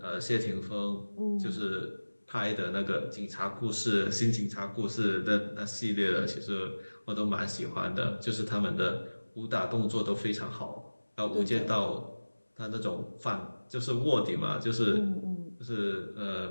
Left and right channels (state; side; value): inverted; both; correlation -1.00